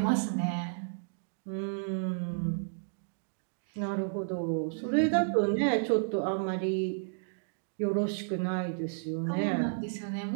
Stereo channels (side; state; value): left; silent; digital silence